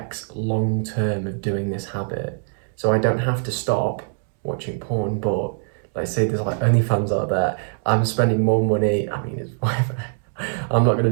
long term of doing this habit. So I don't have to stop watching porn, but let's say there's like OnlyFans out there, I'm spending more money, it's whatever, I'm not going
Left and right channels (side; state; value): left; silent; digital silence